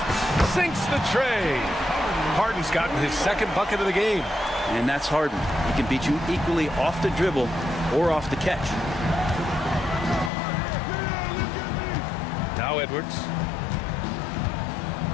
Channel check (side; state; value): right; drops out; at 10.3 s